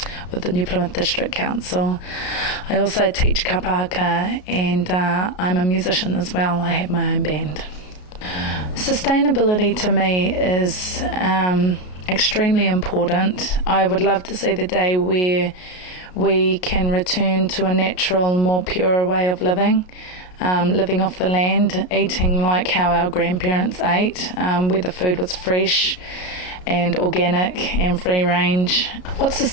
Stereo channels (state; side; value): late; right; 33 ms